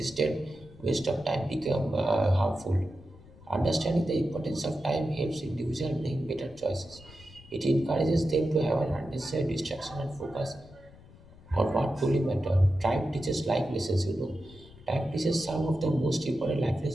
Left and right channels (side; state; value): left; noise; rumble, 22 dB below the sound